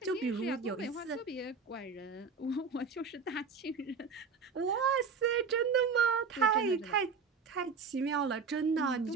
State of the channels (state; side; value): quieter; left; 5.2 dB